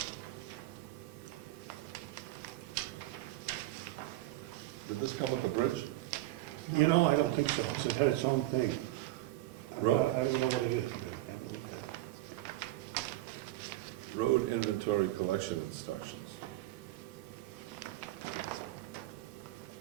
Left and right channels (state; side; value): quieter; left; 16.8 dB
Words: Did this come with a bridge? You know, I don't think so. It had its own thing. I Road. don't know what it is. Road inventory collection instructions.